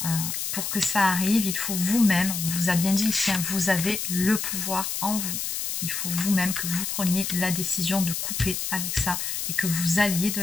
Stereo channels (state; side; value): noise; left; hiss, 3 dB below the sound